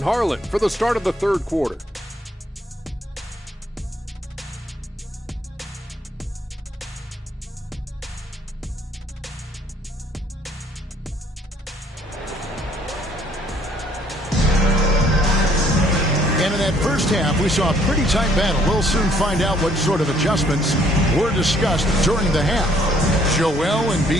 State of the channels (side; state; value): both; normal; correlation 0.63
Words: Harlan for the start of the third quarter. And in that first half, we saw a pretty tight battle. We'll soon find out what sort of adjustments were discussed during the half. Joel